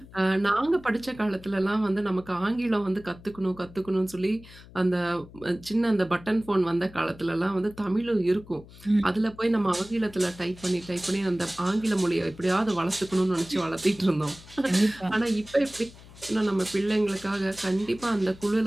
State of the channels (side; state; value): left; noise; hum, 20 dB below the sound